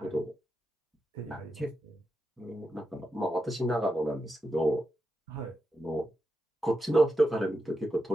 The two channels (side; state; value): both; normal; correlation 0.87